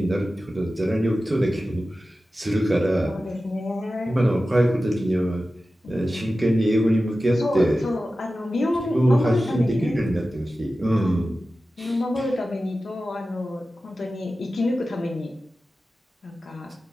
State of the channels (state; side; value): normal; both; correlation 0.94